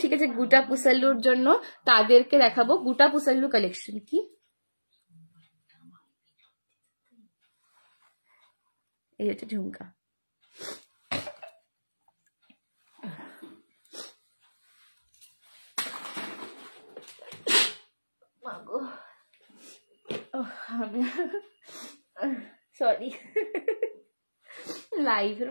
ঠিক আছে, গুটা পুসেল্লুর জন্য, তাদেরকে দেখাবো গুটা পুসেল্লু কালেকশন। কি এই হচ্ছে ঝুমকা। সরি, লাইভের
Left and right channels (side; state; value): both; inverted; correlation -1.00